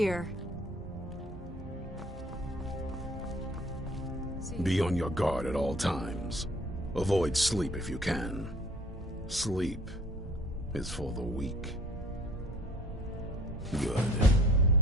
Be on your guard at all times. Avoid sleep if you can. Sleep is for the weak. Good.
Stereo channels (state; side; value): normal; both; correlation 0.51